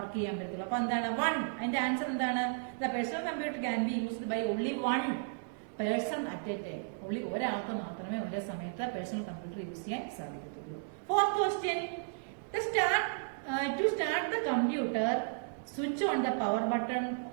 ചെയ്യാൻ പറ്റുള്ളൂ. അപ്പൊ എന്താണ്? 1. അതിന്റെ ആൻസർ എന്താണ്? The personal computer can be used by only 1 person at a time. Only ഒരാൾക്ക് മാത്രമേ ഒരേ സമയത്ത് പേഴ്സണൽ കമ്പ്യൂട്ടർ യൂസ് ചെയ്യാൻ സാധിക്കത്തുള്ളൂ. Fourth question. To start the computer, switch on the power button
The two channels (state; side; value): silent; left; digital silence